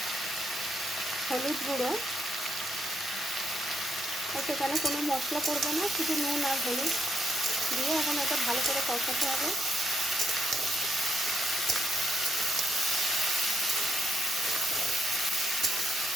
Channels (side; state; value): both; normal; correlation 0.76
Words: হলুদ গুঁড়ো। সেখানে কোনো মশলা পড়বে না, শুধু নুন আর হলুদ দিয়ে এখন এটা ভালো করে কষাতে হবে।